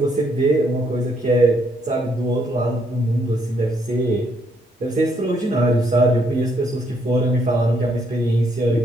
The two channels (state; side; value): normal; both; correlation 0.72